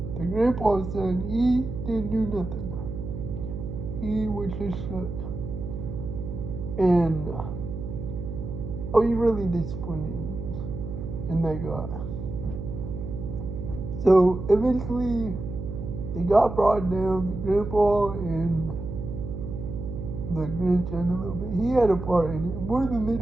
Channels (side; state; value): right; noise; hum, 7 dB below the sound